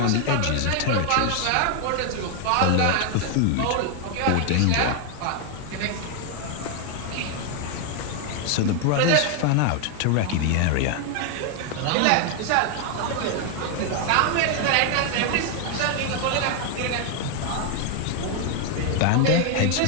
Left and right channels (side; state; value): both; different; correlation 0.00